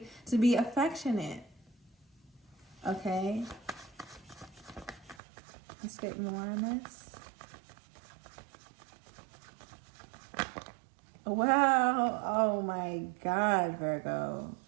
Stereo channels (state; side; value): drops out; left; at 5.2 s